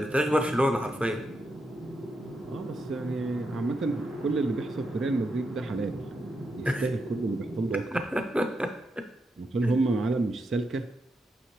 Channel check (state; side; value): normal; both; correlation 0.84